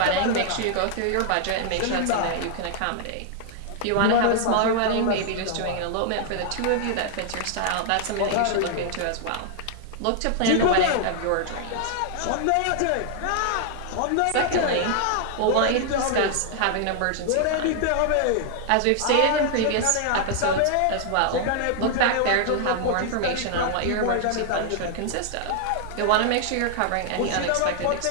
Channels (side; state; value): both; different; correlation 0.00